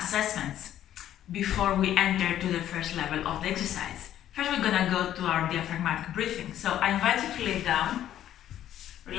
before we enter to the first level of the exercise. First we're gonna go to our diaphragmatic breathing. So I invite you to lay down,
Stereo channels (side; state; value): right; quieter; 11.6 dB